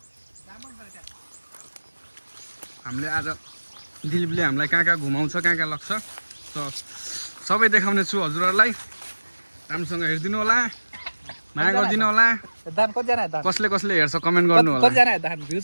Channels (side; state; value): both; inverted; correlation -1.00